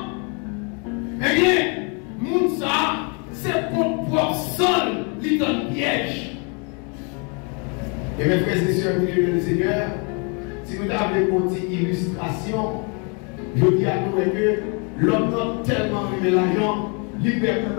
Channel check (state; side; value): quieter; right; 35.5 dB